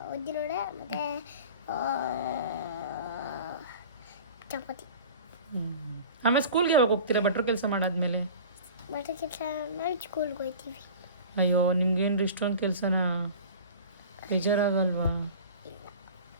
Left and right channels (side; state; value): both; inverted; correlation -0.39